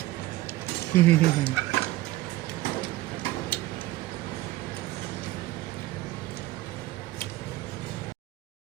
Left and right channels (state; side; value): quieter; left; 17.0 dB